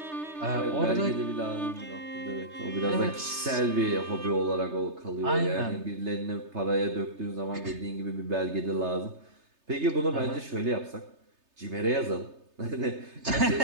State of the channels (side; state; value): left; late; 3.3 ms